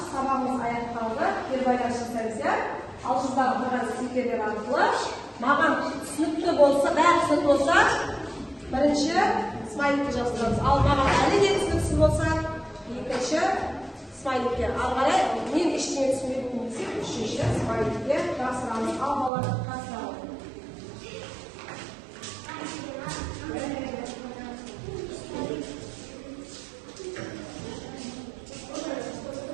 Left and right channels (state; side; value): drops out; left; at 19.3 s